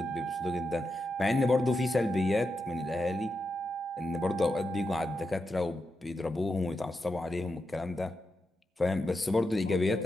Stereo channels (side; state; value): both; normal; correlation 0.87